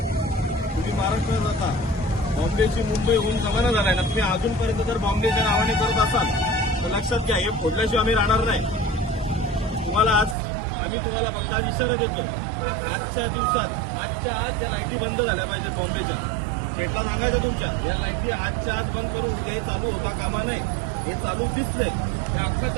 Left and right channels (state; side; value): drops out; left; at 10.4 s